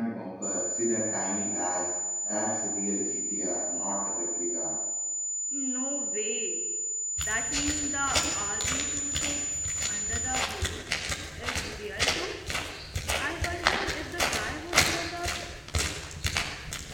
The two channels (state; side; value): identical; both; correlation 1.00